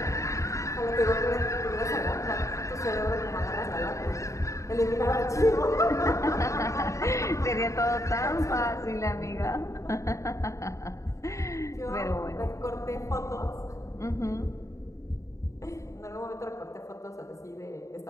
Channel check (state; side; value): late; right; 0.15 ms